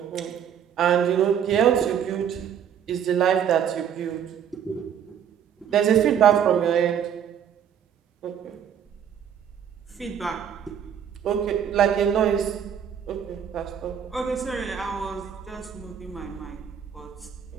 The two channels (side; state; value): left; quieter; 8.6 dB